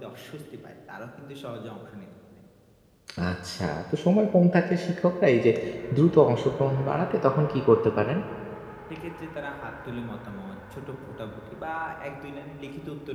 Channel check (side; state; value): both; identical; correlation 1.00